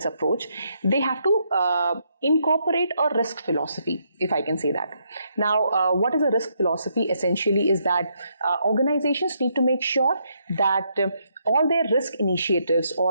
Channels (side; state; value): both; inverted; correlation -0.76